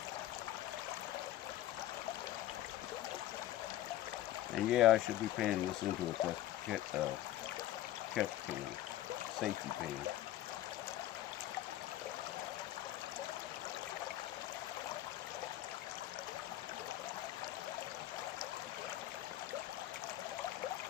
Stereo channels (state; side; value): quieter; right; 13.7 dB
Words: And yeah, I should be panning this into a catch pan, safety pan.